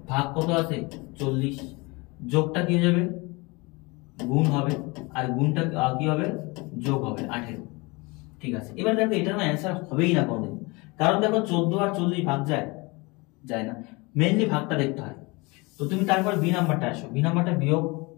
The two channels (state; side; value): quieter; right; 26.0 dB